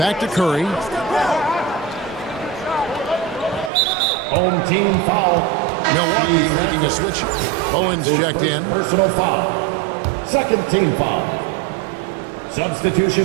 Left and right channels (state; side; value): drops out; left; at 3.7 s